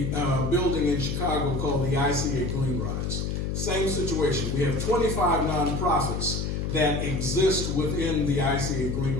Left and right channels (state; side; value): noise; left; hum, 1 dB below the sound